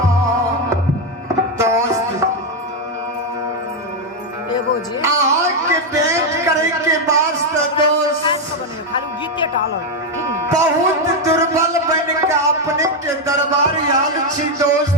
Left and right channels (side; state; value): both; normal; correlation 0.05